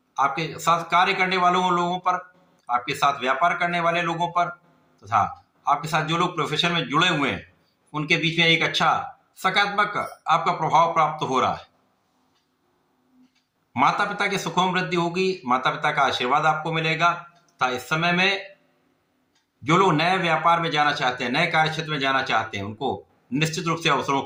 आपके साथ कार्य करने वालों लोगों पर, आपके साथ व्यापार करने वाले लोगों पर तथा आपके साथ जो लोग प्रोफेशन में जुड़े हुए हैं, उनके बीच में एक अच्छा सकारात्मक आपका प्रभाव प्राप्त हो रहा है। माता पिता के सुखों में वृद्धि होगी, माता पिता का आशीर्वाद आपको मिलेगा तथा इस समय में जो लोग नए व्यापार में जाना चाहते हैं, नए कार्य क्षेत्र में जाना चाहते हैं, उनको निश्चित रूप से अवसरों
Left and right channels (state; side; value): identical; both; correlation 1.00